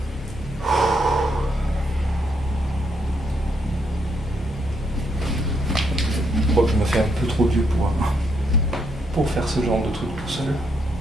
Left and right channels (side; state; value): both; normal; correlation 0.76